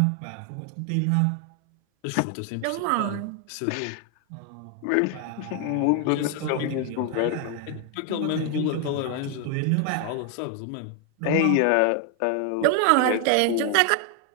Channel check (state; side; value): different; both; correlation 0.00